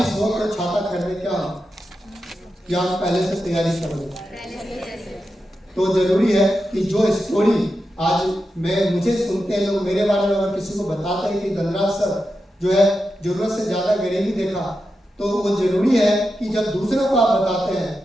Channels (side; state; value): both; normal; correlation 0.89